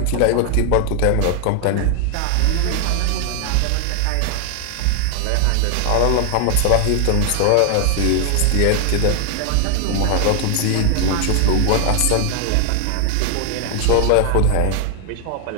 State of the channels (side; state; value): both; different; correlation 0.00